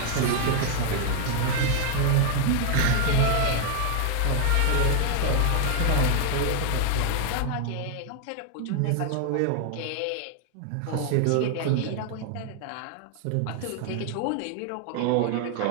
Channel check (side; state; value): both; different; correlation 0.00